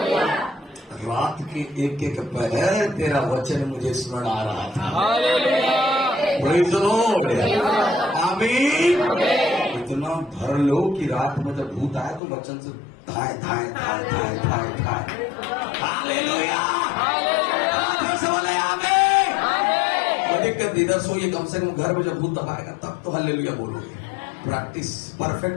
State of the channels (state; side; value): drops out; right; at 12.2 s